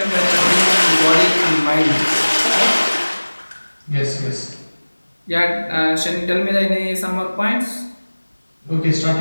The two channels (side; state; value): both; inverted; correlation -1.00